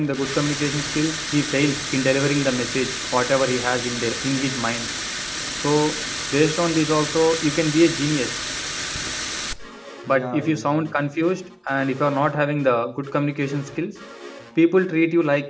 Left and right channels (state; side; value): identical; both; correlation 1.00